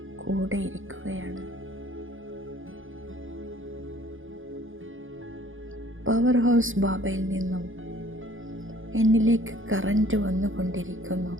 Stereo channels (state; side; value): late; left; 0.58 ms